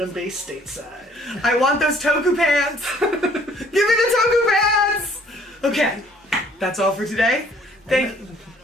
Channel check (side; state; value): both; normal; correlation 0.58